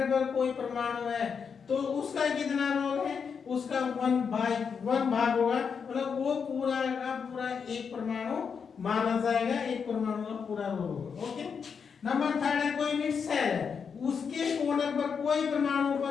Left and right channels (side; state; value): right; quieter; 6.3 dB